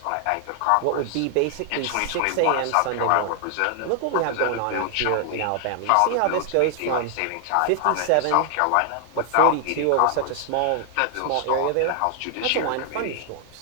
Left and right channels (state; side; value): different; both; correlation 0.00